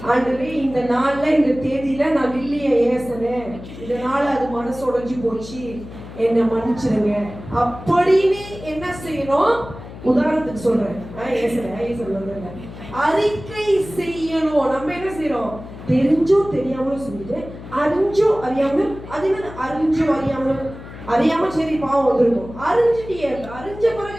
ஆண்டவரே, இந்த நாள்ல இந்த தேதியில நான் இல்லைய ஏசனேன், இதனால அது மனசு உடைஞ்சு போச்சு, என்ன மன்னிச்சிருங்க அப்படின்னு என்ன செய்யணும்? உதாரணத்துக்கு சொல்றேன், அறிக்கை செய்யணும். நம்ம என்ன செய்யறோம்? தெரிஞ்சோ தெரியாமலும் செஞ்சுட்டு, அறிஞ்சோ அறியாமலும், அது என்ன அறிஞ்சோ அறியாமலும் அறியாம சரி பாவம் வந்திருக்கும். அறிஞ்சிட்டியே, அறிஞ்ச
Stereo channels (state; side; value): noise; left; hum, 14 dB below the sound